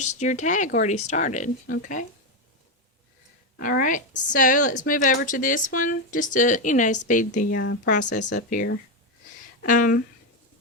your tag already started, okay? Alright, so let's move over to this one, just to, speed the process up here. I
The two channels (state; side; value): normal; both; correlation 0.08